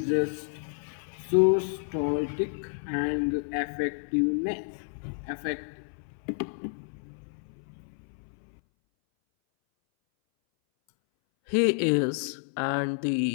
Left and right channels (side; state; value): right; silent; 58 dB below the other